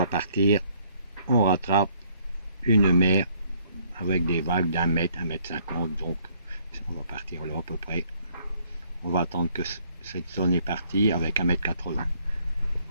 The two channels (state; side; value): inverted; both; correlation -0.65